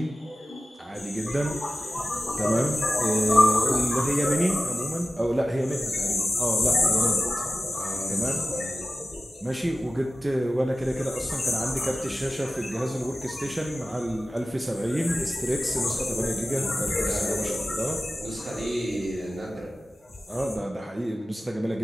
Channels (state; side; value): normal; both; correlation 0.95